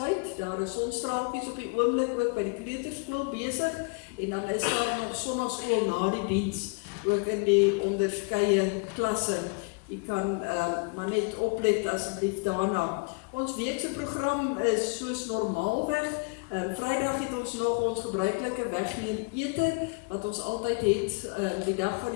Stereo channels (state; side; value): quieter; right; 32.4 dB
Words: Daar is sonstraaltjies op die oomblik ook by die kleuterskool besig en dan is daar nog sonnaskool na die diens ook in die onderskeie klasse. Jy kan maar net oplet asseblief daarna. Ons weekse program is soos normaalweg. Vrydag het ons nog ons gebruikelike wegneem ete wat ons altyd het die dag van